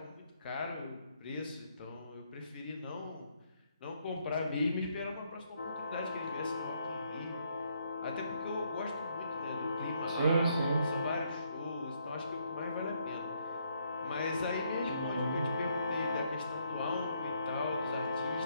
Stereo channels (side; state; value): both; inverted; correlation -0.72